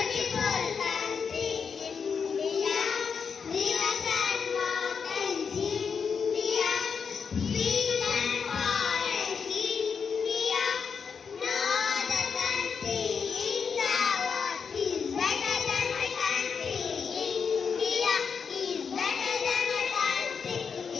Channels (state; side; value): quieter; right; 6.1 dB